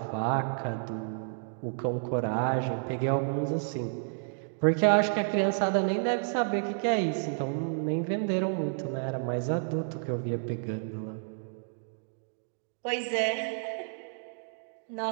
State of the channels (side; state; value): left; silent; digital silence